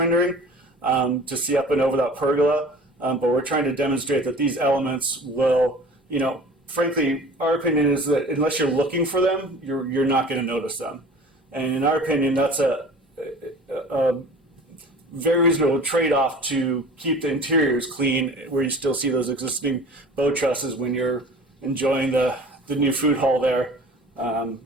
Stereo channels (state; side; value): normal; both; correlation 0.43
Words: to see up and over that pergola, but we're trying to demonstrate that these elements will, frankly, our opinion is that unless you're looking for them, you're not going to notice them. And in our opinion, that's a very reasonable trade-off to keep the interiors clean, where you still see those existing bow trusses when you're enjoying the new food hall there and